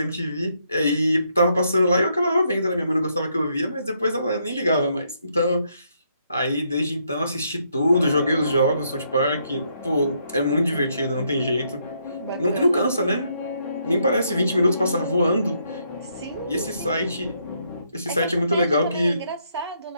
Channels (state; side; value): inverted; both; correlation -0.74